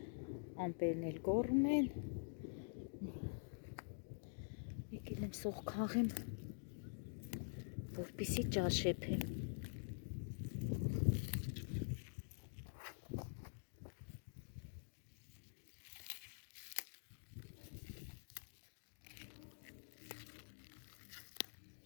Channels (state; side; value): silent; right; digital silence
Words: ամպերն էլ կոռում են։ Եկել եմ սող քաղեմ, որպեսզի ճաշեփեմ։